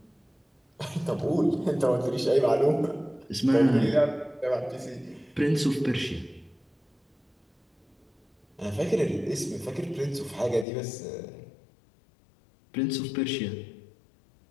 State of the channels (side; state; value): right; drops out; at 10.7 s